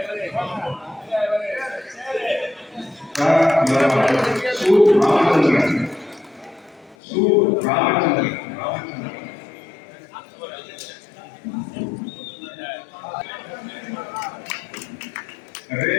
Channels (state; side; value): drops out; right; at 7.0 s